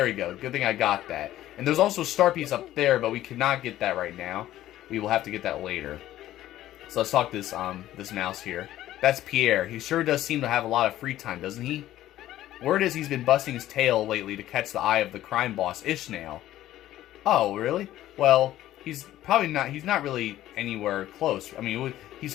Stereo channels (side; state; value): right; quieter; 13.8 dB